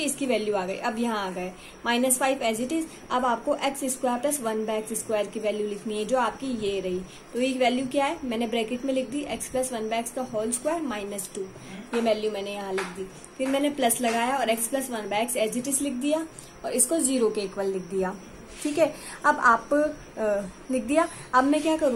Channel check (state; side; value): identical; both; correlation 1.00